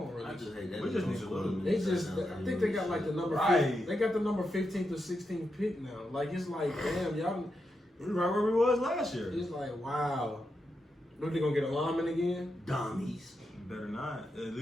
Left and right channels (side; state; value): both; normal; correlation 0.86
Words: really. I just hate that. We just need to lose. They just. I think they got like the number. Right. They got the number 15th or 16th pick now. Like it's like, damn, y'all. We right where we was last year. It's like, wow. What, they gonna get a lineman again? Dummies. Better not. At